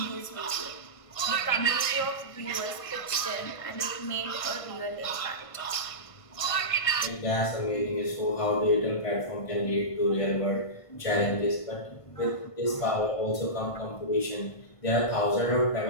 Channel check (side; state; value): right; late; 1.5 ms